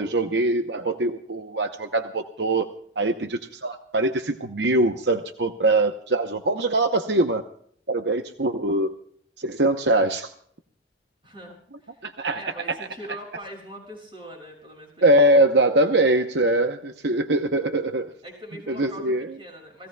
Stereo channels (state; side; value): normal; both; correlation -0.02